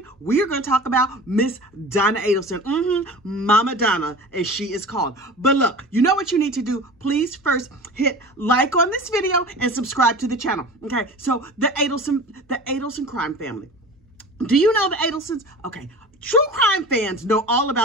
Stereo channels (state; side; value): normal; both; correlation 0.37